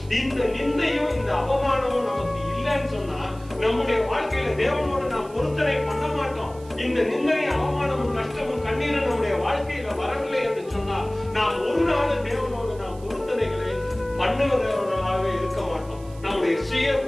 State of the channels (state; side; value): noise; right; hiss, 24 dB below the sound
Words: இந்த நிந்தையும் இந்த அவமானமும் நமக்கு இல்லைன்னு சொன்னா நம்முடைய வாழ்க்கையில தேவனோடு நாம் பொருத்தனை பண்ண மாட்டோம். இந்த நிந்தையும் அவமானமும் கஷ்டமும் கண்ணீரும் நம்முடைய வாழ்க்கையில வரவில்லை என்று சொன்னால் நாம் ஒரு நாள் தேவனோடு நாம் பொருத்தனைகளை பண்ணுவதவர்களாகவே இருக்க மாட்டோம். நம்முடைய சுய